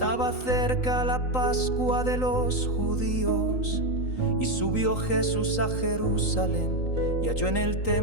cerca la Pascua de los judíos. Y subió Jesús a Jerusalén y halló en el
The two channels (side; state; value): right; late; 3.9 ms